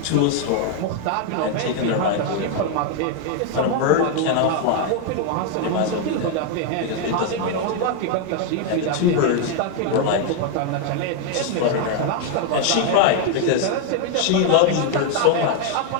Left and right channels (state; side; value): different; both; correlation 0.00